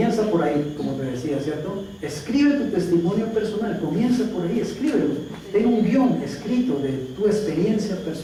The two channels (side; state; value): both; identical; correlation 1.00